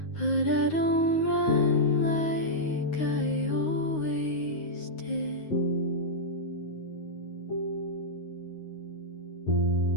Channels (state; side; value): late; right; 9.5 ms